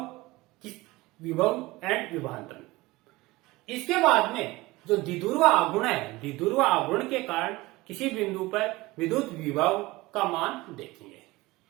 विभव एंड विभवांतरण। इसके बाद में जो द्विध्रुव आघूर्ण है, द्विध्रुव आघूर्ण के कारण किसी बिंदु पर विद्युत विभव का मान देखेंगे।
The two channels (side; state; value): left; quieter; 20.6 dB